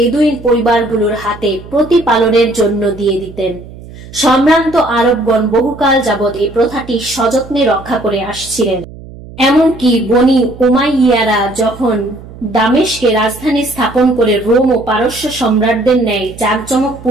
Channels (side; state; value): right; noise; hum, 17 dB below the sound